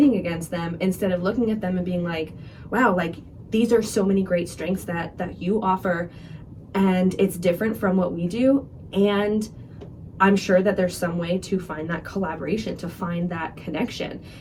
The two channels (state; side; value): identical; both; correlation 1.00